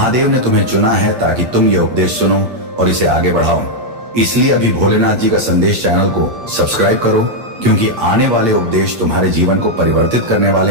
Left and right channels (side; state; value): left; late; 8.5 ms